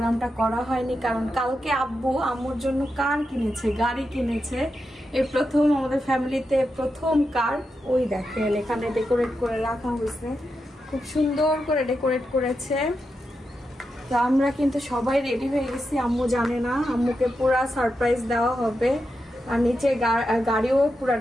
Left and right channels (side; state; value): both; normal; correlation 0.87